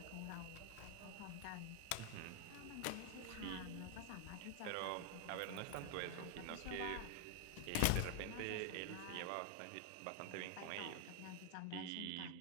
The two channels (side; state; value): both; different; correlation 0.00